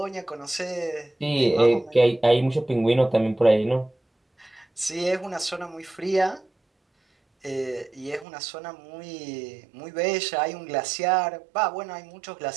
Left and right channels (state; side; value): drops out; left; at 8.2 s